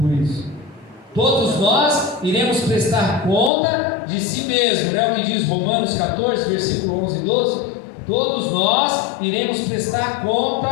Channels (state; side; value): drops out; right; at 3.5 s